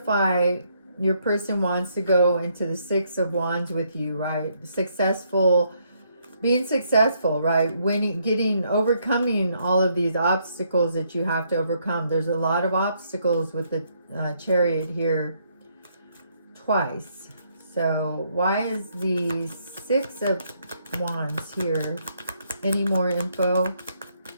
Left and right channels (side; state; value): both; inverted; correlation -0.72